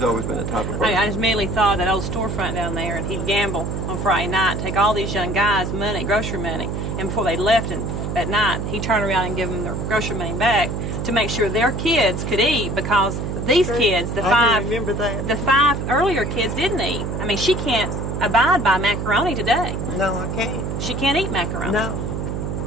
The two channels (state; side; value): noise; right; hum, 3 dB below the sound